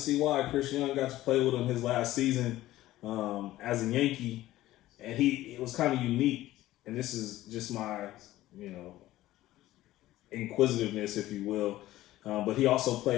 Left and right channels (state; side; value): quieter; right; 15.6 dB